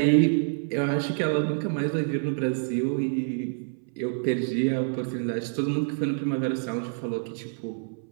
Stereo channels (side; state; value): left; silent; 60 dB below the other